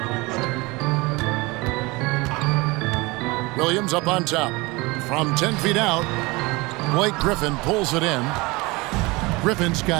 Williams up on top. From 10 feet out, Blake Griffin pulls it in. Griffin's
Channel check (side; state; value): left; quieter; 24.0 dB